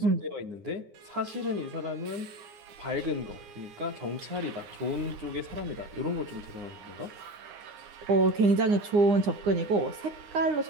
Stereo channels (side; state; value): left; late; 9.8 ms